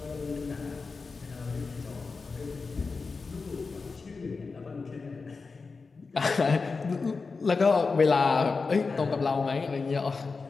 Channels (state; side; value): quieter; right; 4.4 dB